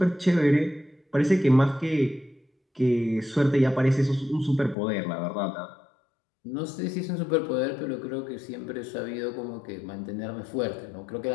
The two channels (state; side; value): drops out; right; at 4.8 s